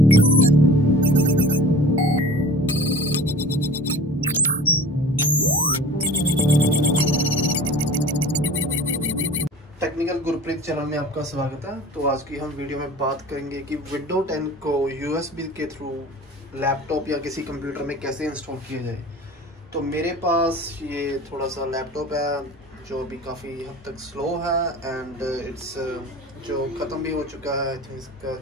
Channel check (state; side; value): normal; both; correlation 0.41